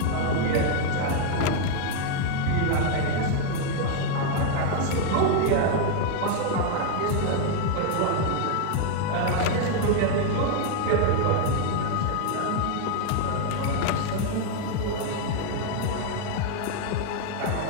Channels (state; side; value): different; both; correlation 0.00